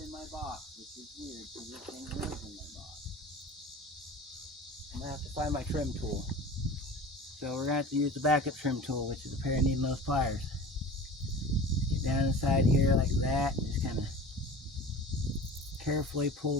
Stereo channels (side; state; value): both; normal; correlation 0.38